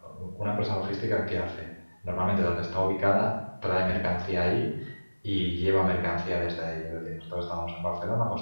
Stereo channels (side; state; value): both; inverted; correlation -1.00